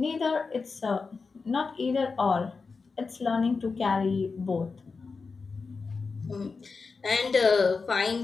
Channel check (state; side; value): quieter; right; 4.6 dB